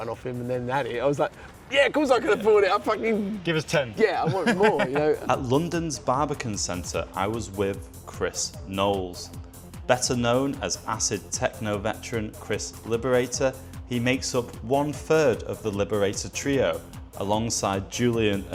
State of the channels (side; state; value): both; identical; correlation 1.00